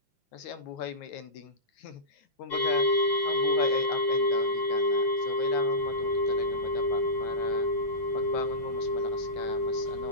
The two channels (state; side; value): late; right; 5.7 ms